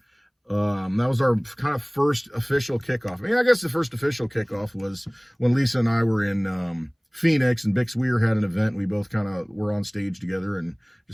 That was our kind of first official kickoff. I mean, I guess the first official kickoff was when Lisa and I were in Phoenix, and Bix Weir had an event. We both kind of were on stage together and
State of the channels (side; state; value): both; identical; correlation 1.00